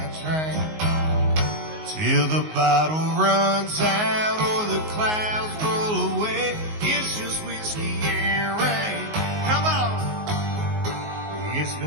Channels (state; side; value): late; left; 19 ms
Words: train. Till the bottle runs out or the clouds roll away, it's just whiskey and rain. Come on! It's